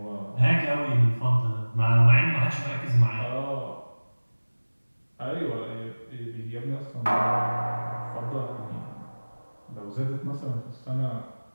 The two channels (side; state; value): both; inverted; correlation -1.00